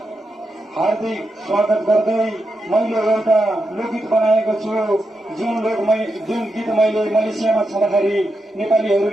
हार्दिक स्वागत गर्दै मैले एउटा लोकगीत बनाएको छु। जुन गीत मैले मलेसियामा छँदाखेरि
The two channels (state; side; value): normal; both; correlation 0.86